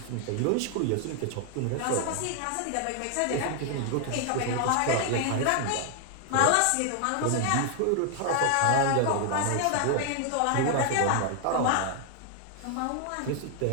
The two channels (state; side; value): different; both; correlation 0.00